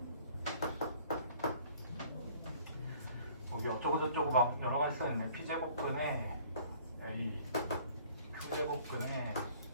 여기 어쩌고저쩌고 막 여러 가지 써있네. P제곱근에 A, Q제곱근에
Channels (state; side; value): inverted; both; correlation -0.54